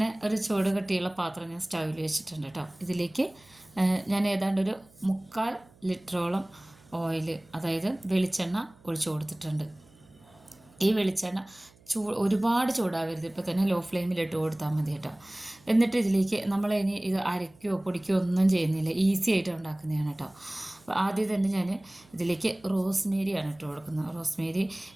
ഒരു ചൂട് കട്ടിയുള്ള പാത്രം ഞാൻ സ്റ്റൗവിൽ വെച്ചിട്ടുണ്ട് കേട്ടോ. ഇതിലേക്ക് ഞാൻ ഏതാണ്ട് ഒരു 3/4 ലിറ്ററോളം ഓയിൽ, അതായത് വെളിച്ചെണ്ണ ഒഴിച്ചു കൊടുത്തിട്ടുണ്ട്. ഈ വെളിച്ചെണ്ണ ഒരുപാട് ചൂടാവരുത്, ഇപ്പോൾ തന്നെ ലോ ഫ്ലെയിമിലിട്ട് കൊടുത്താൽ മതി കേട്ടോ. എന്നിട്ട് ഇതിലേക്ക് നമ്മൾ ഇനി ഇത് അരയ്ക്കുകയോ പൊടിക്കുകയോ ഒന്നും ചെയ്യുന്നില്ല, ഈസി ആയിട്ട് ഉണ്ടാക്കുന്നതാണ് കേട്ടോ. അപ്പോൾ ആദ്യം തന്നെ ഞാൻ ഇതിലേക്ക് റോസ്മേരിയാണ് ഇട്ട് കൊടുക്കുന്നത്. റോസ്മേരി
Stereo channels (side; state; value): right; noise; hum, 28 dB below the sound